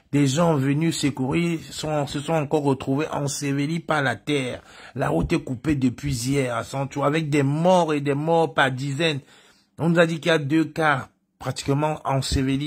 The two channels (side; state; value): both; identical; correlation 1.00